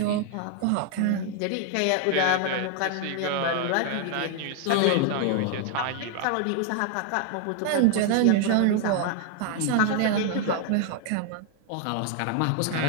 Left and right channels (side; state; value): both; different; correlation 0.00